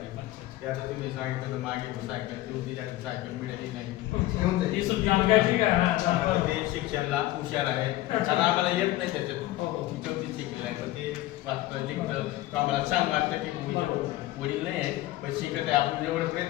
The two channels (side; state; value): right; quieter; 16.5 dB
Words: ते आता तुम्ही सांगितलं तर मागे सायकल देऊन तिच्याकडे सायकल मिळाली नाही. घेऊन ती जाईल. सुद्धा आता ते शिक्षणाला हुशार आहे, कारण आम्हाला येत नाही त्याच्यातून. हो, हो. चौथी शिकलेलं आहे, पण ते वाचतं लिखतं तर आम्हाला छान वाटतं की वडील नाही आहे पण शिकत आहे, आपण जेवढं